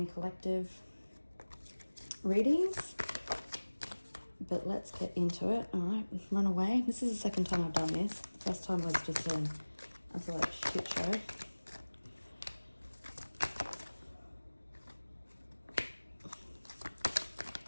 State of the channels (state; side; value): inverted; both; correlation -1.00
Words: collective readings. But let's get into it. All right, run away. This is the second time I've done this. The first time was just an absolute shit show.